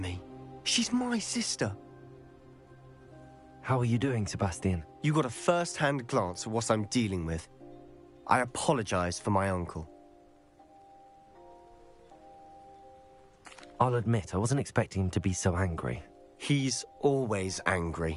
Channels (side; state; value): both; identical; correlation 1.00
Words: She's my sister. How are you doing, Sebastian? You got a first-hand glance at what I'm dealing with. I apologize for my uncle. I'll admit, I wasn't expecting him to be so angry. He's always